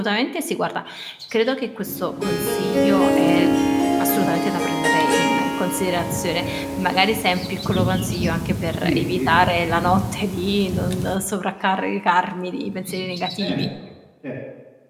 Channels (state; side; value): identical; both; correlation 1.00